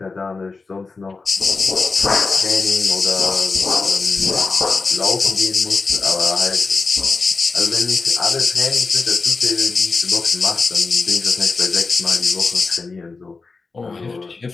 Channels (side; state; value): right; quieter; 4.1 dB